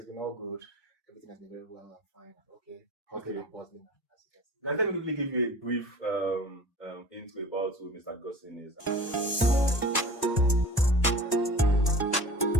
been all good. Everything has been very well and fine and okay. Hustling and bustling, as you can see. Let me quickly give you a brief intro about who Mr. Godson is.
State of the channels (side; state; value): both; normal; correlation 0.40